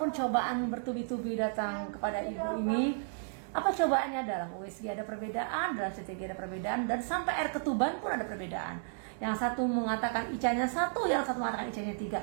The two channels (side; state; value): left; silent; digital silence